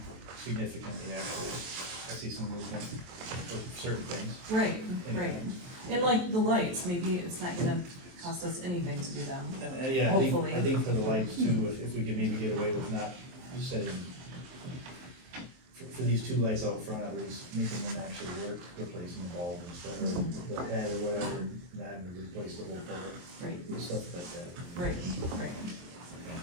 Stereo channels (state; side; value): late; left; 23 ms